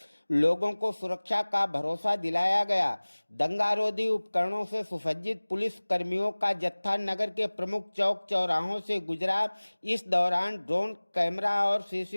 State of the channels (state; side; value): inverted; both; correlation -1.00